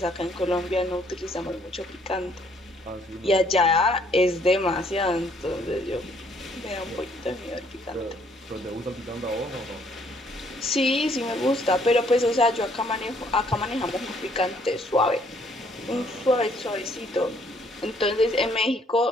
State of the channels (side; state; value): both; normal; correlation 0.65